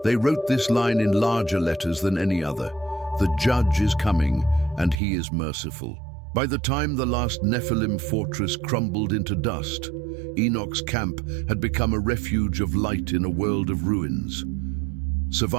They wrote this line in larger letters than any other: the judge is coming, and he is merciful. By the time the last Nephilim fortress crumbled into dust, Enoch's camp had become a refuge of light in a world of ruins.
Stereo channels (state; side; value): drops out; left; at 5.0 s